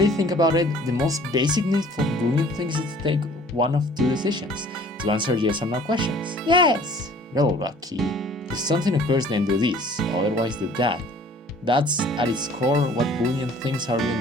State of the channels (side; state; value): both; normal; correlation 0.52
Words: think about it, the most basic need for Boolean things is to take one of two decisions, to answer yes or no questions. Yes. You're lucky. If something occurs, then do this, otherwise do that. That's at its core what Boolean things are